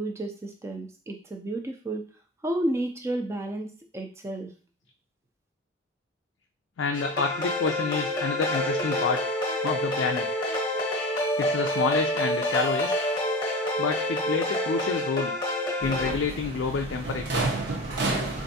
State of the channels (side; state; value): both; normal; correlation 0.29